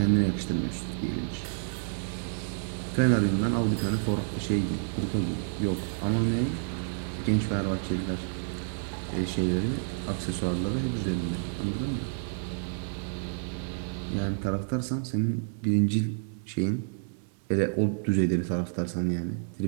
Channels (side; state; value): left; silent; digital silence